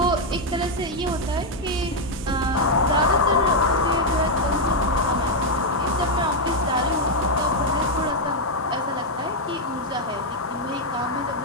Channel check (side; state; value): both; normal; correlation 0.00